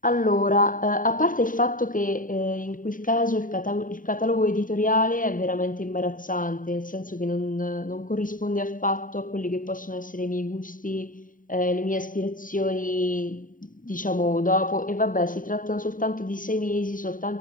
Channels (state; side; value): late; right; 0.39 ms